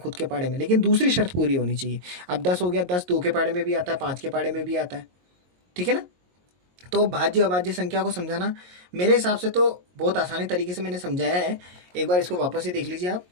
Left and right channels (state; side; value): late; left; 22 ms